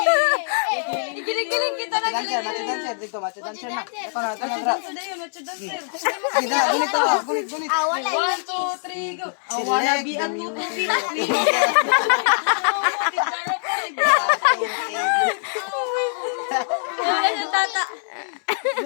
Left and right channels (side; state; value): right; silent; 64 dB below the other